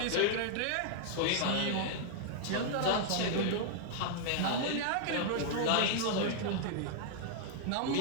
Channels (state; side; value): different; both; correlation -0.01